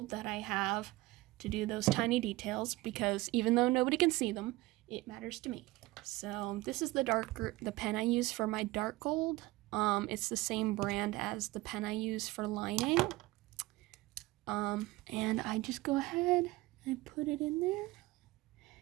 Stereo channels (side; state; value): left; quieter; 19.9 dB